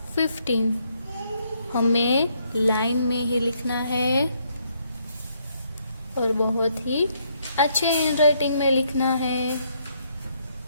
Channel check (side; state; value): both; inverted; correlation -0.72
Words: 15। हमें लाइन में ही लिखना है और बहुत ही अच्छे हैंडराइटिंग में लिखना है।